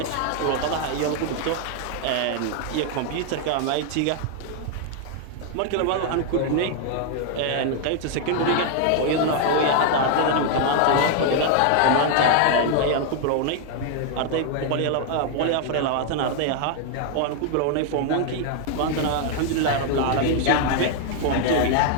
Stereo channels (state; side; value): different; both; correlation 0.00